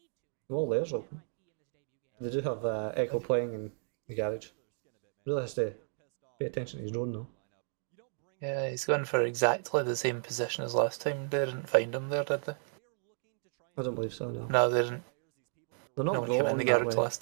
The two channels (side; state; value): left; silent; 55 dB below the other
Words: wall there's open. They do have Echo playing in the garage. Really has to pay attention to his drone though. Yeah, he's gone for exactly the same position as last time. They didn't find him there, did they? I don't believe so. No, No, they didn't. they're not No one came in rolling the that garage way. last